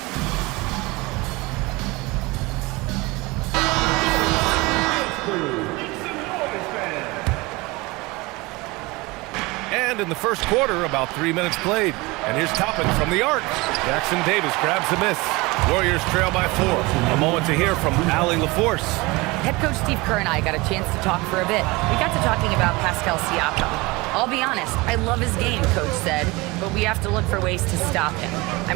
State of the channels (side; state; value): left; quieter; 23.4 dB